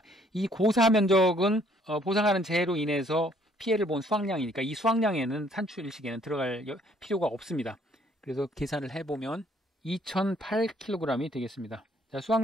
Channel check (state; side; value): normal; both; correlation 0.63